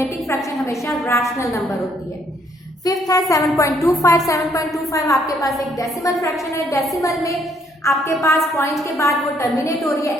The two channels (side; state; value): both; normal; correlation 0.68